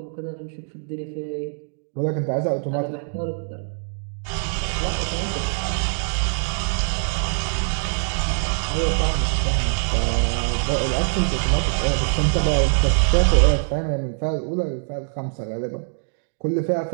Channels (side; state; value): left; silent; digital silence